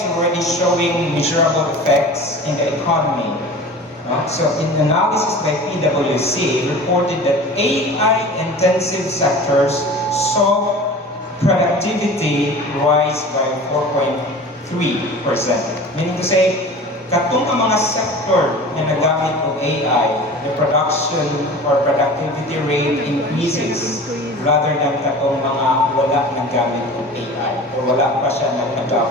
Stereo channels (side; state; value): both; normal; correlation 0.38